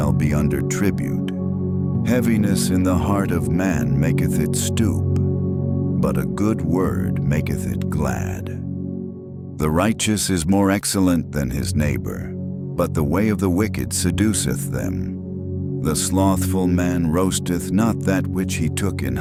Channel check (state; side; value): identical; both; correlation 1.00